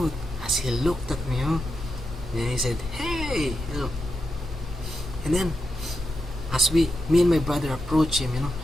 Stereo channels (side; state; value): both; normal; correlation 0.86